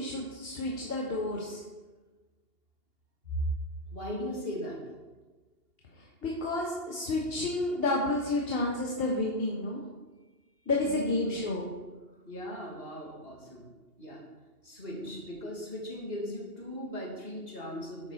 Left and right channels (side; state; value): left; late; 2.8 ms